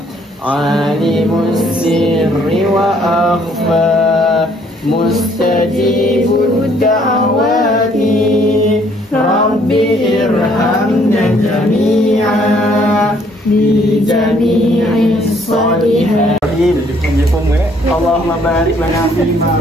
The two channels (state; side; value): normal; both; correlation 0.64